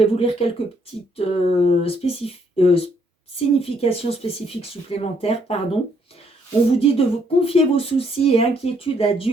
vous lire quelques petites significations spécifiques supplémentaires, pardon. On vous dit de vous confier vos soucis et inquiétudes à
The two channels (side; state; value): both; normal; correlation 0.70